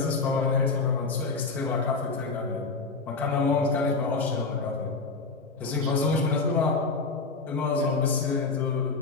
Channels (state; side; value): quieter; right; 4.1 dB